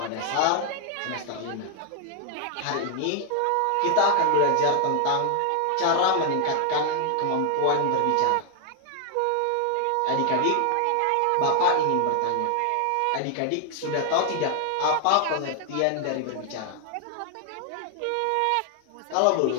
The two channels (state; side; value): different; both; correlation 0.00